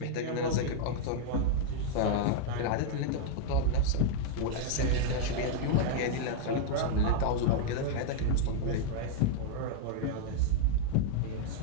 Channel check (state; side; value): different; both; correlation -0.01